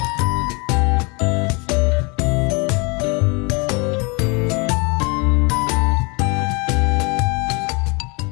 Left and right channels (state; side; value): quieter; right; 30.1 dB